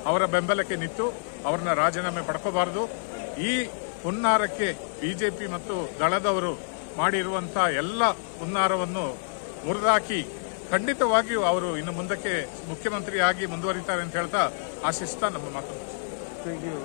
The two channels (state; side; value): silent; right; 60 dB below the other